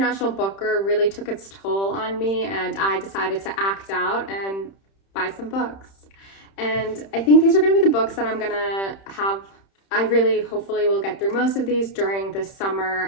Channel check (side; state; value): right; late; 31 ms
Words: Booker really took its toll on me and I decided to act out and buy some books. And I think these are going to be the books that I'm going to have. I really hopefully will get through most of these during this